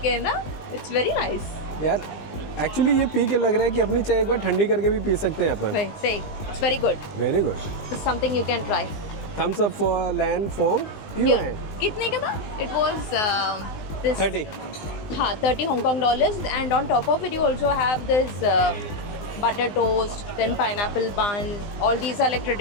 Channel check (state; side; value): late; right; 20 ms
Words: के ना, इट्स वेरी नाइस। यार एक्चुअली ये पी के लग रहा है कि अपनी चाय एक बार ठंडी करके भी पी सकते हैं अपन। Say it's very good, very good. It's something you can try. Thumbs up for Lan फॉर्म यूएन। कितने का था? It was this 30। हाँ, 30 Hong Kong dollars, and on top of it you also have this butter toast, then pineapple bun. All these are like